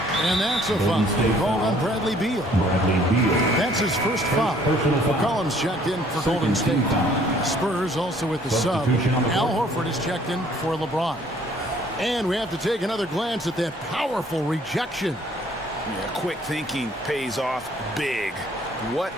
And that's a foul called on Bradley Beal. That's his first foul. McCollum's checked in for Golden State. Spurs also with the sub. Al Horford is checked in for LeBron. And we have to take another glance at that powerful rejection. Yeah, quick thinking pays off big. What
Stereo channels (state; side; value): normal; both; correlation 0.59